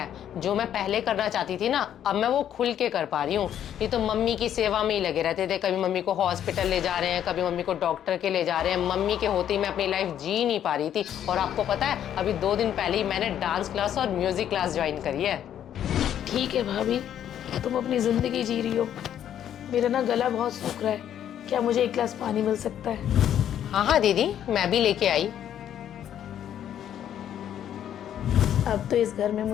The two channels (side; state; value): right; quieter; 10.2 dB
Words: जो मैं पहले करना चाहती थी ना, अब मैं वो खुल के कर पा रही हूँ। ये तो मम्मी की सेवा में ही लगे रहते थे। कभी मम्मी को हॉस्पिटल ले जा रहे हैं, कभी मम्मी को डॉक्टर के ले जा रहे हैं। मम्मी के होते ही मैं अपनी लाइफ जी नहीं पा रही थी। और आपको पता है, अभी 2 दिन पहले ही मैंने डांस क्लास और म्यूजिक क्लास ज्वाइन करी है। ठीक है भाभी, तुम अपनी ज़िंदगी जी रही हो। मेरा ना गला बहुत सूख रहा है, क्या मुझे 1 गिलास पानी मिल सकता है? हाँ हाँ दीदी, मैं भी लेके आई। अब तो इस घर में